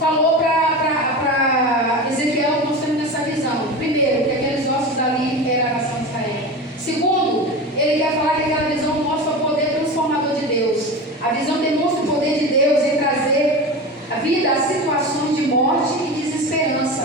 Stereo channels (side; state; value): both; normal; correlation 0.27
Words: para Ezequiel, mostrando essa visão. Primeiro, que aqueles ossos ali eram a nação de Israel. Segundo, ele quer falar que aquela visão mostra o poder transformador de Deus. A visão demonstra o poder de Deus em trazer a vida a situações de morte e